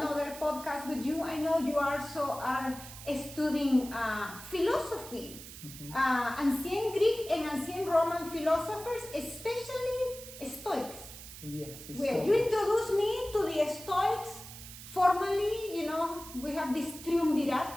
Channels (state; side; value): noise; right; hiss, 14 dB below the sound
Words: podcast with you. I know you also are studying philosophy, ancient Greek and ancient Roman philosophers, especially Stoics. Yes. Well, you introduced me to the Stoics formally. You know, we have this